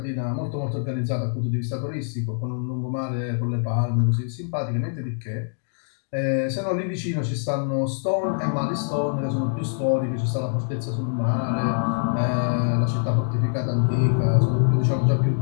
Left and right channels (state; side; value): silent; right; digital silence